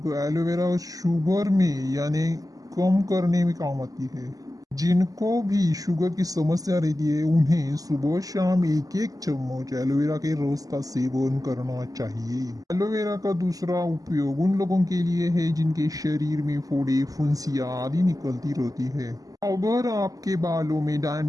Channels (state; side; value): late; left; 0.17 ms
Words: एलोवेरा शुगर में यानी कम करने में काम आती है। जिनको भी शुगर की समस्या रहती है उन्हें सुबह शाम एक एक चम्मच एलोवेरा के रस का सेवन करना चाहिए। एलोवेरा का दूसरा उपयोग उन लोगों के लिए है जिनके शरीर में फोड़े फुंसियाँ आदि निकलती रहती है। अगर आपके बालों में